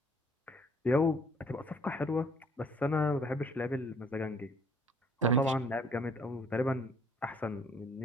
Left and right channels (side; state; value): both; normal; correlation 0.60